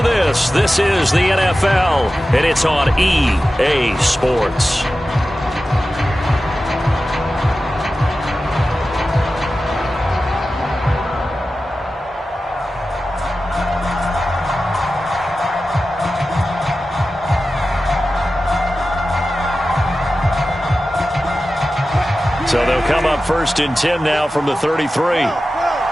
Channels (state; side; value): normal; both; correlation 0.94